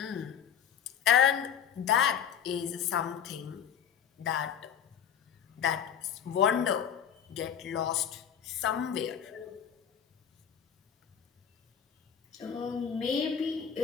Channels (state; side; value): quieter; right; 8.5 dB